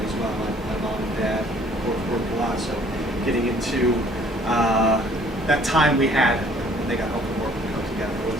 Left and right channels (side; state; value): both; normal; correlation 0.57